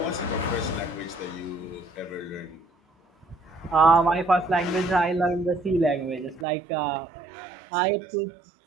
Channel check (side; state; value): left; drops out; at 6.5 s